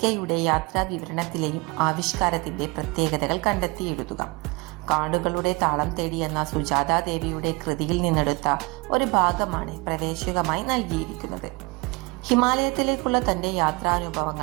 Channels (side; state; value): left; quieter; 26.8 dB